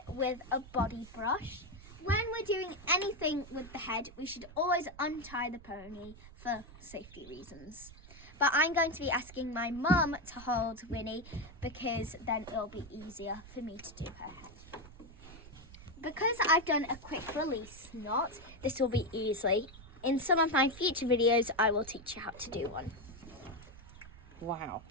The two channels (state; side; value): noise; right; rumble, 18 dB below the sound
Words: with a body brush. When we're doing anything with the head, we should always untie the pony for safety reasons. But I'm going to be asking my mum to hold Winnie because then it'll be easier for me to do her head. Because I've done a quick release knot, this will be easy. In some of my future videos, I will teach you how to do one. Wow,